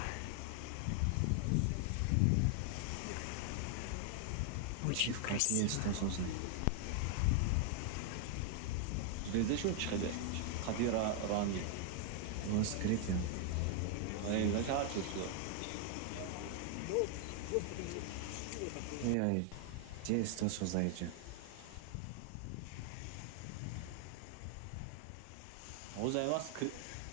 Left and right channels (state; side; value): different; both; correlation 0.00